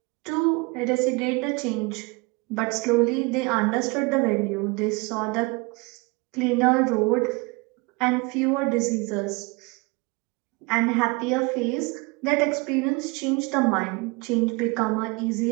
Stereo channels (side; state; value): left; quieter; 27.1 dB